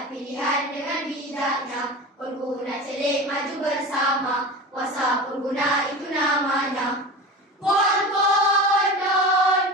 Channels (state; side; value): normal; both; correlation 0.30